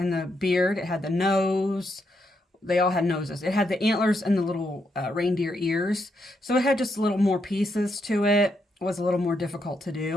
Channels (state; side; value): normal; both; correlation 0.79